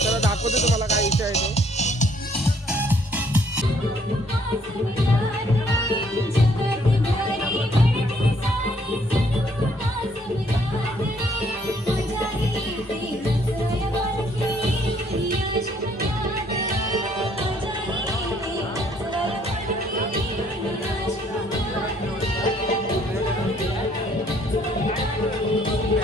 दाखवतो तुम्हाला काय विषय आहे तो.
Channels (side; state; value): both; normal; correlation 0.64